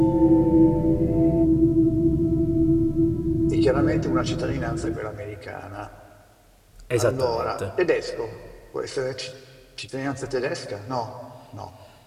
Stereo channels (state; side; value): identical; both; correlation 1.00